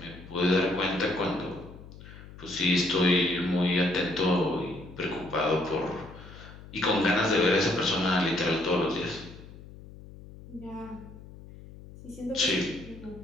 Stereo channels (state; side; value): noise; left; hum, 17 dB below the sound